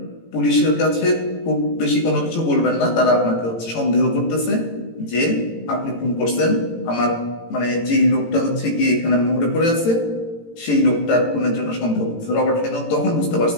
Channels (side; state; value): right; late; 18 ms